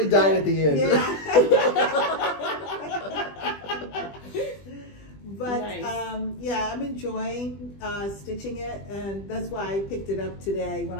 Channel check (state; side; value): late; right; 20 ms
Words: died at the end. Yeah. But nice. yeah, I'm enjoying stitching it, and that's why I picked it up today when